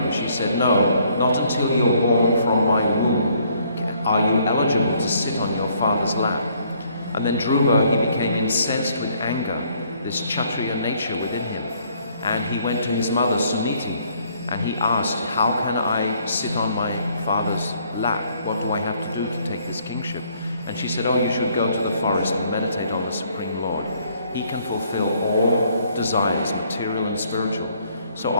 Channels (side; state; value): both; inverted; correlation -0.65